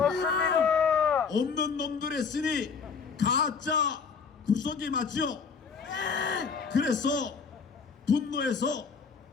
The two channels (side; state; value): right; quieter; 5.6 dB